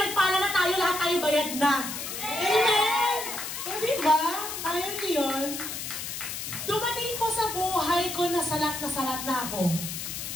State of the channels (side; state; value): left; noise; hiss, 6 dB below the sound